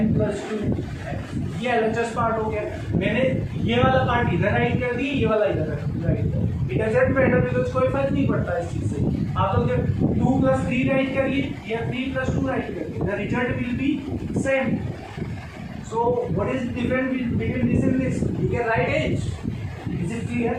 plus 2x। ये एलएचएस पार्ट हो गया। मैंने ये वाला पार्ट इधर राइट कर दिया, ये वाला इधर राइट कर, इट डजंट मैटर बिकॉज़ कोई फर्क नहीं पड़ता इस चीज से। आप लोग जब 2 प्लस 3 राइट करिए या 3 प्लस 2 राइट करिए, the result will be same. So what is different between this and this, you can write it. Is it clear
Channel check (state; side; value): identical; both; correlation 1.00